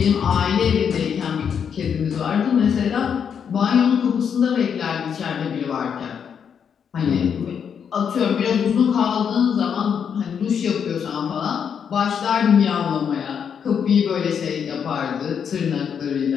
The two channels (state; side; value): quieter; right; 7.4 dB